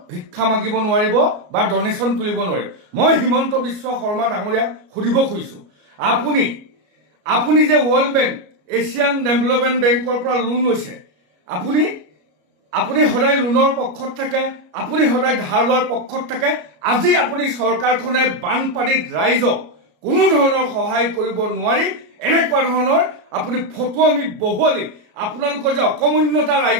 ভিক্ষা মাগিব নোৱাৰিব বা ডনেশ্যন তুলিব নোৱাৰিব। মই হিমন্ত বিশ্ব শৰ্মা ডাঙৰীয়াক সুধিব খুজিছোঁ, আপুনি যে ৱৰ্ল্ড বেংক, এছিয়ান ডেভেলপমেণ্ট বেংকৰ পৰা লোন লৈছে, আপুনি সদায় লোনৰ পক্ষত থাকে, আপুনি সদায় ধাৰ লোৱাৰ পক্ষত থাকে। আজি আপুনি চৰকাৰখনে বানপানীত ৰাইজক কোনো ধৰণৰ সহায় কৰিব নোৱাৰি এনেকুৱা ধৰণৰ আপুনি ফটুৱামি বহুৱালি আপোনালোকৰ যে অকমন্যতা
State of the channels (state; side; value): late; left; 33 ms